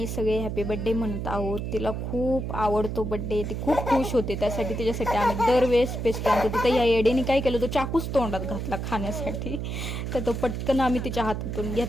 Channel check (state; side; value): noise; right; hum, 4 dB below the sound